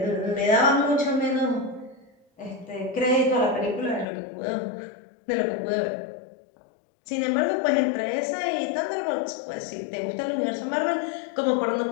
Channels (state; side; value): drops out; right; at 4.0 s